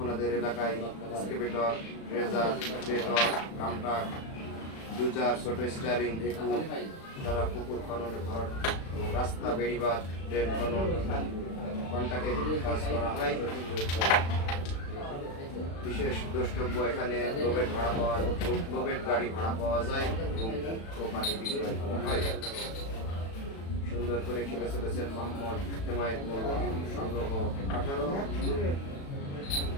এলাকায় এক্সকেভেটর, রেজার, বেটর, কামটাক, ডুজার, ছোট স্টারিং, ঢেকু দ্বারা পুকুর খননে ভরাট এবং রাস্তা, বেড়িবাঁধ, ড্রেন খনন, কন্টাকে কাজ করা হয়। বিশেষ দ্রষ্টব্য, এখানে লোবেট গাড়ি ভাড়া পাওয়া যায় এবং পানি বিক্রয় করা হয়। সুন্দর করে খেলে চলেছেন মোহাম্মদ হেমায়েত মোল্লা, সংগ্রহ 18।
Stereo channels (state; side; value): late; right; 36 ms